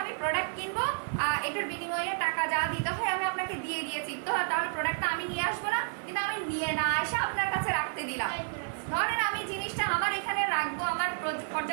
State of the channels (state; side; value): silent; left; 57 dB below the other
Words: আমি প্রোডাক্ট কিনবো, এটার বিনিময়ে টাকা যা দিতে হয় আমি আপনাকে দিয়ে দিয়েছি, তো তাহলে প্রোডাক্টটা আমি নিয়ে আসবো না, কিন্তু আমি নিয়ে না এসে আপনার কাছে রাখতে দিলাম। ধরেন আমি জিনিসটা আমার এখানে রাখবো, আমার